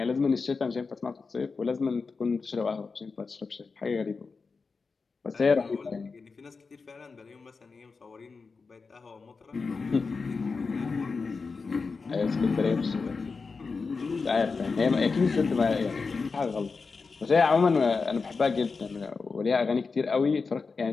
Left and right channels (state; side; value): quieter; right; 4.6 dB